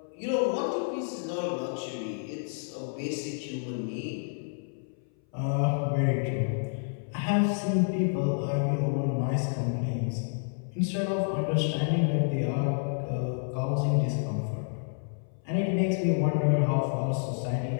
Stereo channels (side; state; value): right; silent; 58 dB below the other